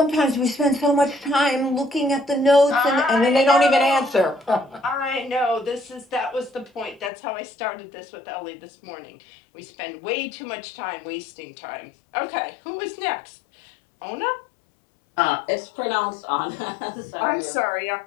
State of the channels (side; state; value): right; drops out; at 7.1 s